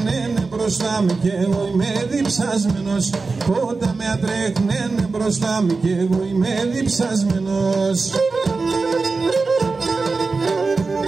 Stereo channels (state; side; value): quieter; left; 4.1 dB